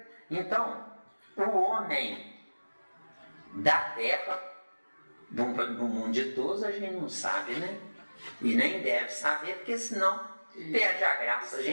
Então, o homem da terra, do mundo de todos, a gente não sabe, né? E nem deve saber, porque senão perde a graça. A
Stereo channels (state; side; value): inverted; both; correlation -1.00